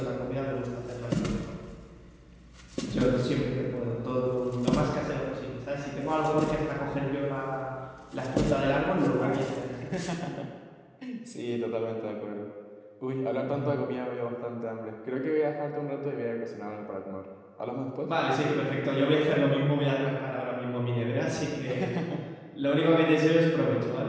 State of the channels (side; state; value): both; identical; correlation 1.00